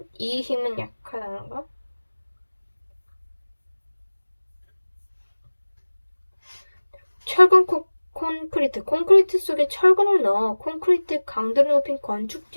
이 힘은 약하다는 거. 철근 콘크리트. 콘크리트 속에 철근을 넣어 콘크리트 강도를 높인 건축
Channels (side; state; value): both; inverted; correlation -1.00